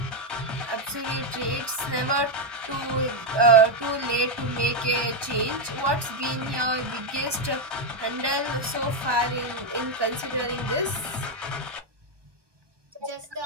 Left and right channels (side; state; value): left; late; 1.2 ms